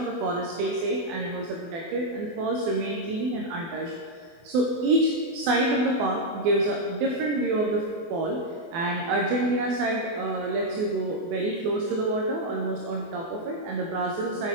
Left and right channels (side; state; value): left; late; 24 ms